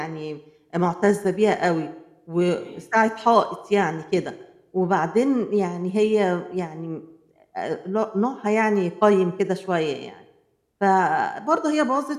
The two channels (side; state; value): both; identical; correlation 1.00